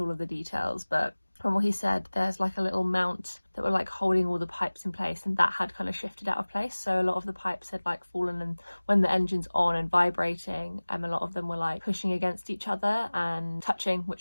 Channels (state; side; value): inverted; both; correlation -1.00